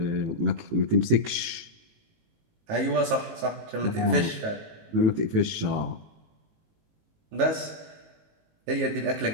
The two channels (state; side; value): late; left; 19 ms